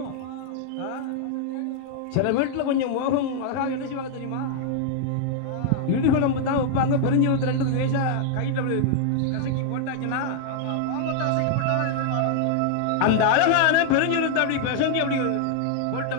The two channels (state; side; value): different; both; correlation 0.00